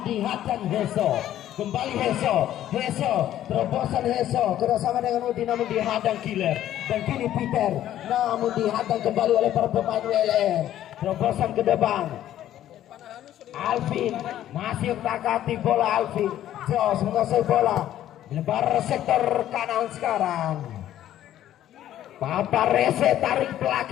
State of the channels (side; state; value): right; quieter; 12.2 dB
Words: dihadang Besok. Kembali Heso, terobosan Heso kerjasama dengan Udin namun dihadang Killer. Dan kini Peter namun dihadang kembali oleh para pemain WLM. Terobosan ke depan Alvin masih takati bola Alvin. Jos menguasai bola, lebar sektor kanan sekarang. Paparese tarik